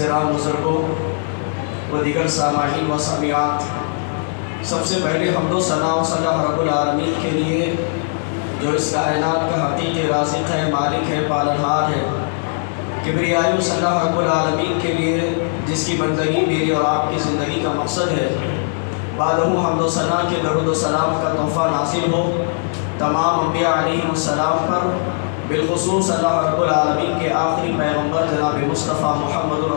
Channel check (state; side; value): silent; right; digital silence